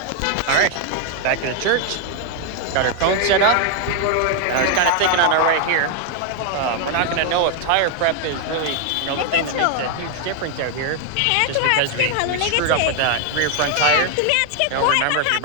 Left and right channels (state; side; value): different; both; correlation 0.00